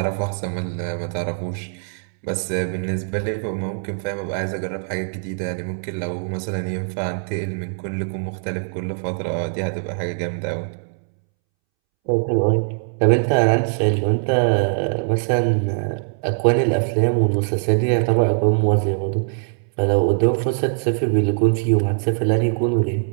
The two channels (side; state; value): left; silent; 64 dB below the other